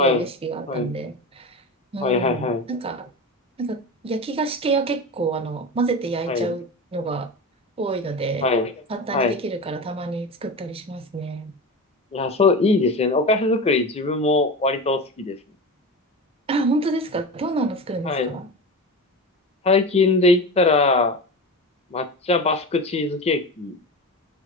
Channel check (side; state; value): both; normal; correlation 0.26